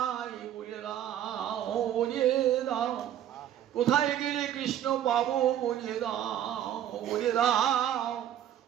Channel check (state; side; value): quieter; left; 11.0 dB